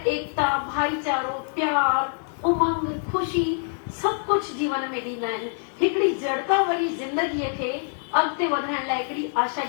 भाईचारो, प्यार, उमंग, ख़ुशी सभु कुझु जीवन में ॾींदा आहिनि। हिकिड़ी जड़ता वारी ज़िंदगीअ खे अॻिते वधाइण लाइ हिकिड़ी आशा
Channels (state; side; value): silent; right; 62 dB below the other